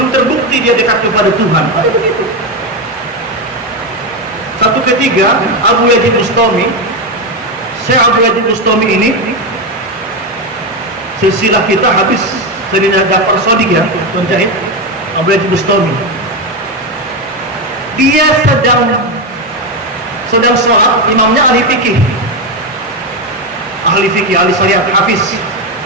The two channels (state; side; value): normal; both; correlation 0.11